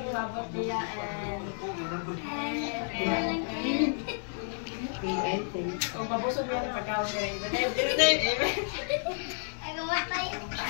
from above niya and kung mabusog niya ng pagkawin niya.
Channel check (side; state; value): right; silent; digital silence